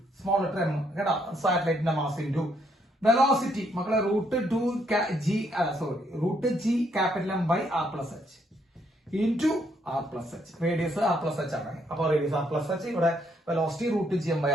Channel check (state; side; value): normal; both; correlation 0.72